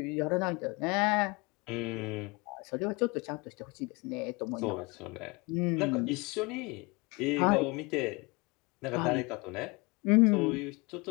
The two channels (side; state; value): right; quieter; 26.9 dB